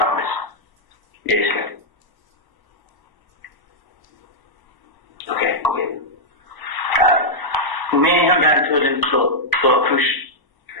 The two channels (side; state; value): right; late; 1.0 ms